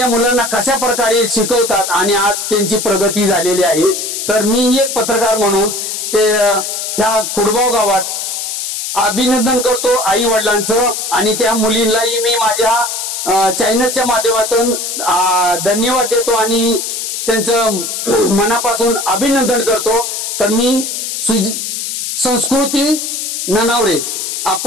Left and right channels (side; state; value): left; noise; hiss, 4 dB below the sound